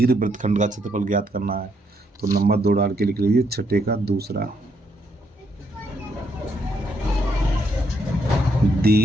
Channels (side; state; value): both; normal; correlation 0.74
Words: वृत्तखंड का क्षेत्रफल ज्ञात करना है, तो नंबर 2 डाल के लिख लीजिए 6 का दूसरा।